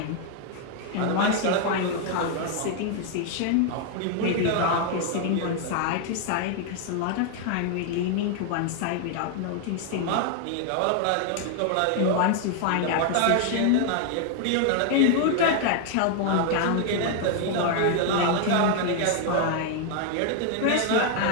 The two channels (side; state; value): both; different; correlation 0.00